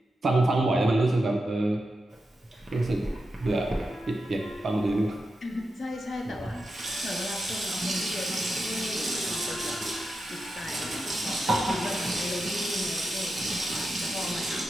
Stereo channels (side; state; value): both; normal; correlation 0.89